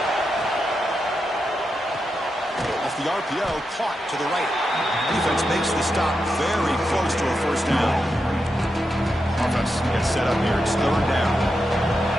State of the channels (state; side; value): normal; both; correlation 0.87